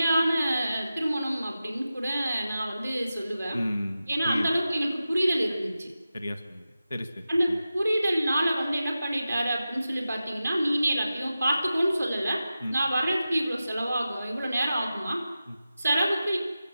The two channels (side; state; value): both; inverted; correlation -0.93